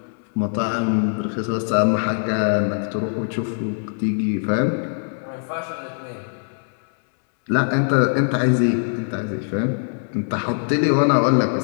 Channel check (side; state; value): right; silent; 64 dB below the other